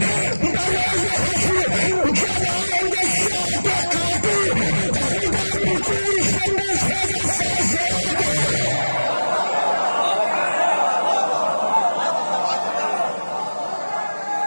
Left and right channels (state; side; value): inverted; both; correlation -1.00